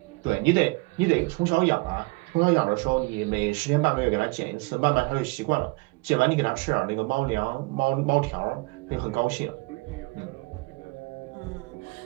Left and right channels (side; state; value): left; quieter; 26.3 dB